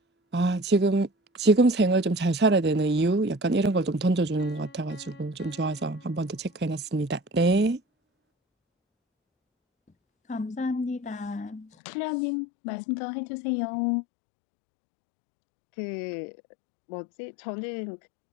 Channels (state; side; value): drops out; right; at 11.7 s